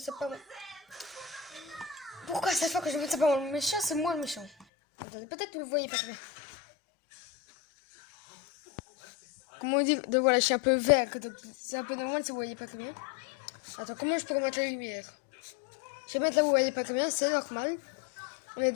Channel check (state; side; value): drops out; right; at 4.7 s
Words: pas moi. Pourquoi à chaque fois que je me dis c'est pas moi le méchant, c'est moi le méchant? Attendez, peut-être que vous le voyez pas très bien. Comment on dit? Donc voilà, je suis un peu vert. C'est un peu normal si vous voyez pas très bien. Attends, comment je peux remettre la lumière? Je vais mettre là où vous voyez pas très bien, c'est normal. On est